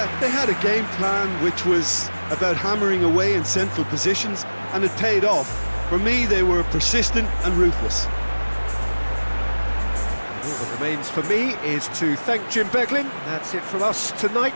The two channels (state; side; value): inverted; both; correlation -1.00